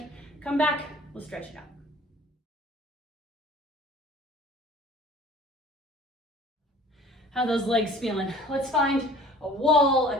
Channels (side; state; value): both; normal; correlation 0.48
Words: come back, we'll stretch it out. How are those legs feeling? Let's find a wall, a